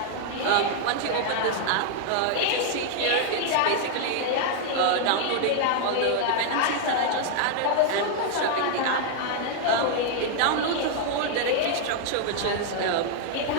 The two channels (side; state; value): both; different; correlation 0.00